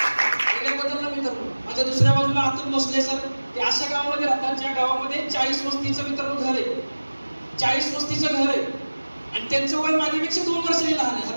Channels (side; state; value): both; inverted; correlation -1.00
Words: एरियाबद्दल मित्रांनो. माझ्या दुसऱ्या बाजूला अतुल भोसले सर, ते अशा गावामध्ये राहतात ज्या गावामध्ये 40 वस्तीचं मित्रांनो घर आहे. 40 वस्तीचं घर आहे आणि त्यांचं वय माझ्यापेक्षा 2 वर्षांनी लहान आहे.